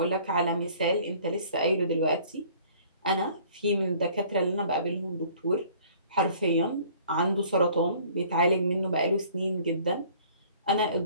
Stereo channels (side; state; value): both; inverted; correlation -0.53